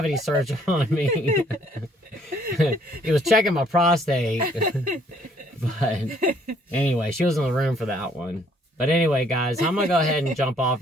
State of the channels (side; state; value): both; normal; correlation 0.64